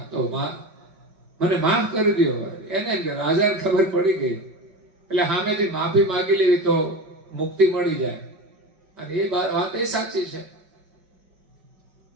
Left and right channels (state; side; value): late; left; 5.2 ms